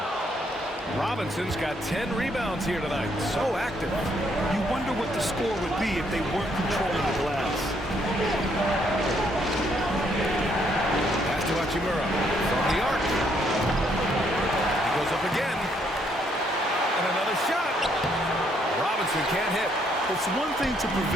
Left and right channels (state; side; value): normal; both; correlation 0.71